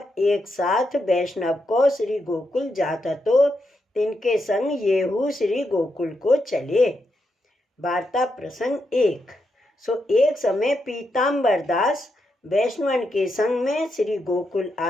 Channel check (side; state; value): both; normal; correlation 0.83